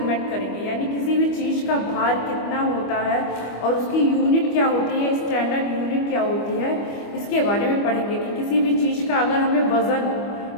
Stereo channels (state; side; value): late; right; 25 ms